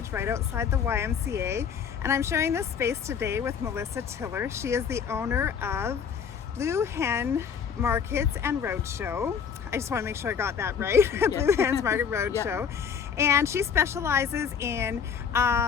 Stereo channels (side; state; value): right; quieter; 7.0 dB